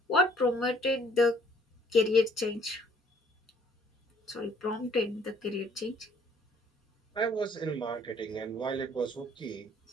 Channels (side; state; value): both; normal; correlation 0.61